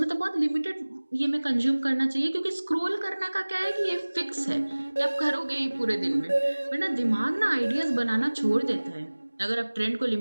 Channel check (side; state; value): both; inverted; correlation -1.00